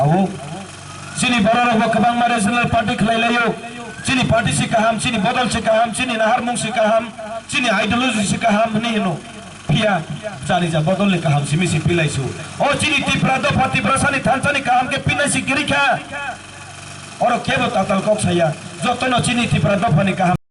sini bororo ba kabang ma regional party khlailayo sini party si kaham sini bodol si kaham sini naharmung si kaham sini ideology si kaham ni no pia jani ja bodol le kaham simi si pilaisu o sini tiprado pati prasani thansani kaham ke pinai si girikha oro kebo tatal kok saya jotono sini tiprado pani kaham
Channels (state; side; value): identical; both; correlation 1.00